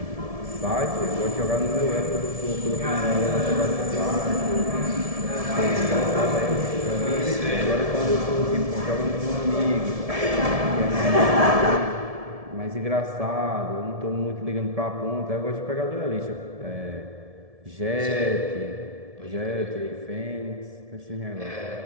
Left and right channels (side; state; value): left; late; 1.7 ms